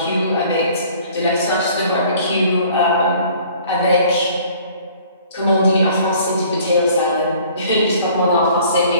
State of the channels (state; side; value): inverted; both; correlation -0.53